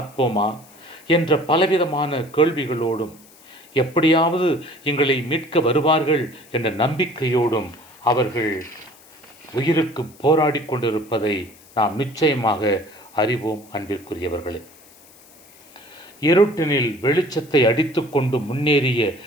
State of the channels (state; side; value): noise; left; hiss, 25 dB below the sound